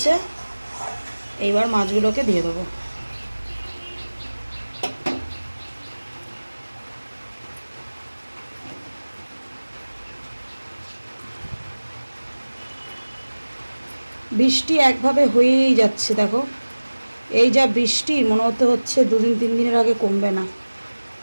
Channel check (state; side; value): inverted; both; correlation -1.00